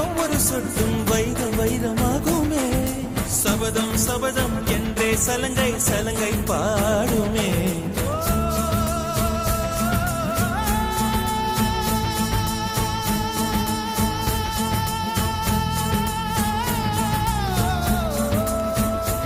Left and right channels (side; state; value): both; identical; correlation 1.00